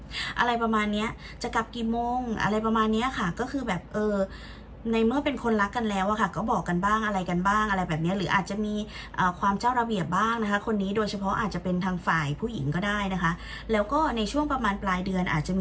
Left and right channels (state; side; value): identical; both; correlation 1.00